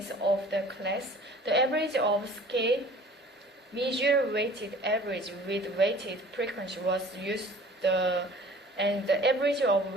of the class, the average of scale, measure weighted average with weighted frequency was used, and the average of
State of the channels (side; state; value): both; normal; correlation 0.47